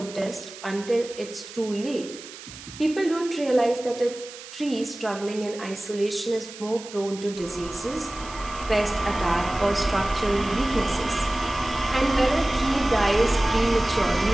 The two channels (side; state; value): right; noise; hiss, 15 dB below the sound